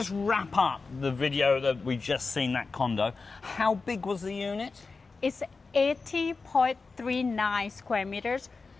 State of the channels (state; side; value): quieter; right; 4.2 dB